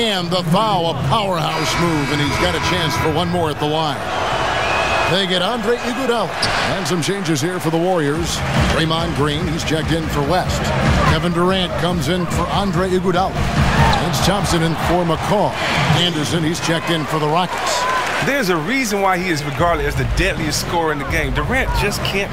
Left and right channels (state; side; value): identical; both; correlation 1.00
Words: the foul, a powerhouse move, and he's got a chance for one more at the line. They get Andre Iguodala. And some changes here for the Warriors. Draymond Green, he's checked in for West. Kevin Durant comes in for Andre Iguodala. Lance Thompson in for McCaw. Anderson, he's checked in for the Rockets. There's a reason why he is regarded as the deadliest scorer in the game. Durant just can't